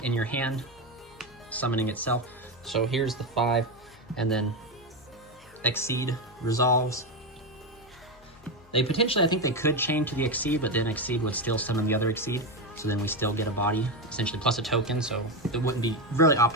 in your hand, summoning itself. So here's the 5, and then Exceed resolves. They potentially, I think they could chain to the Exceed, but then Exceed would still summon the other Exceed. So then we still get a body, essentially, plus a token, so it wouldn't be really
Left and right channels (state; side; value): noise; left; hum, 27 dB below the sound